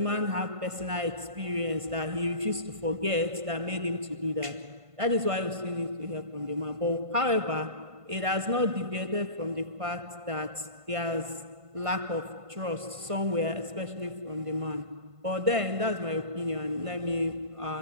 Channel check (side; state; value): left; late; 1.5 ms